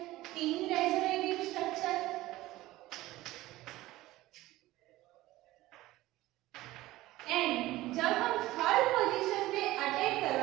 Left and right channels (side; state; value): left; quieter; 17.2 dB